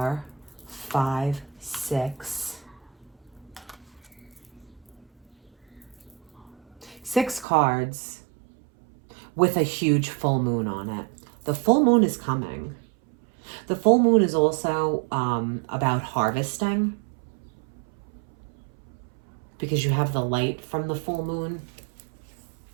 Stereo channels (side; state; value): left; drops out; at 7.5 s